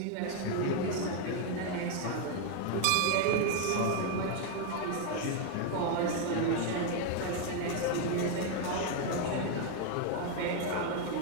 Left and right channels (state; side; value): different; both; correlation 0.01